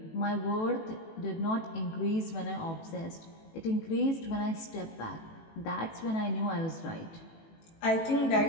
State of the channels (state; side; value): late; right; 18 ms